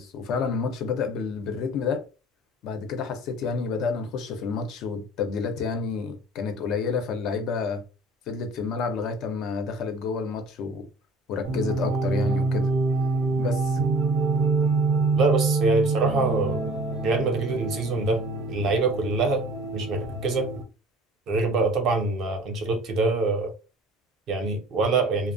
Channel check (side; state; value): both; normal; correlation 0.46